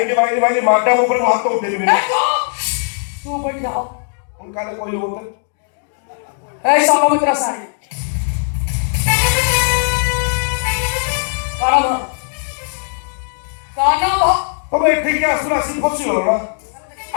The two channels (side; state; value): right; silent; 66 dB below the other